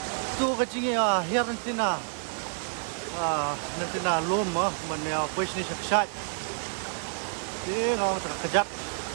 tu ka jinge hier nantina nantina lom man ya push ni sakshat dia ngau tak kejap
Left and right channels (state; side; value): silent; left; 59 dB below the other